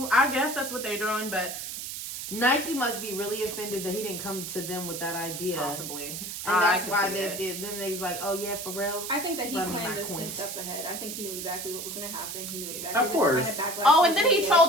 I guess that's what they're doing, but Nike must be really offended that he didn't come to them with that idea. possibly. And I that's could why see they it. did. Then they's like, oh yeah, for real. I think that he Run me planned my this 10 coins. steps ahead. I think he knew exactly what was going to happen. He knew exactly Of course. the kind of backlash. Oh, was and then gonna he get.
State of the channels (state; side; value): noise; right; hiss, 7 dB below the sound